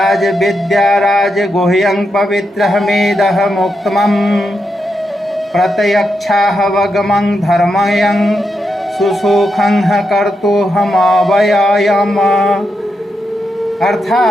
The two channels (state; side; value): normal; both; correlation 0.85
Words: विद्या राज गुह्यं पवित्रमेदः मुक्तमं प्रत्यक्षाहवगमं धर्मयं सुसुखं कर्तुहमव्ययम्।